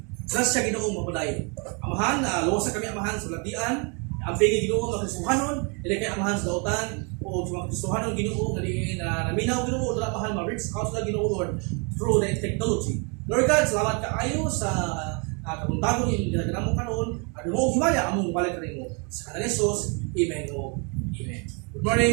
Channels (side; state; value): left; quieter; 34.6 dB